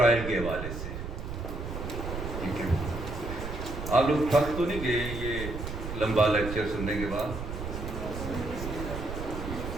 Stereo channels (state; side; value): noise; right; rumble, 6 dB below the sound